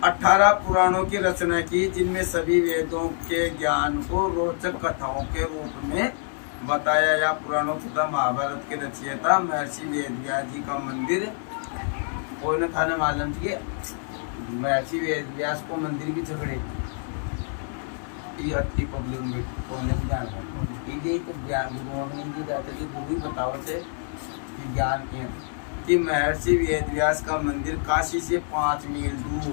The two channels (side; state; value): right; silent; 61 dB below the other